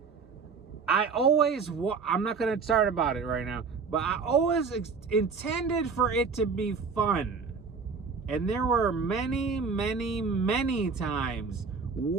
I'm not going to start about it right now, but I always intended for it to be fun. And there were many, many, many times,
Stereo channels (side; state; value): left; quieter; 5.2 dB